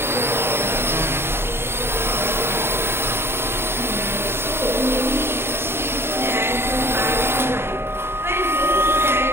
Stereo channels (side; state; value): left; late; 0.11 ms